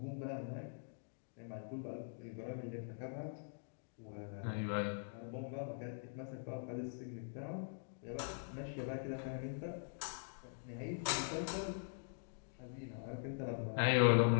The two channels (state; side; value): silent; right; digital silence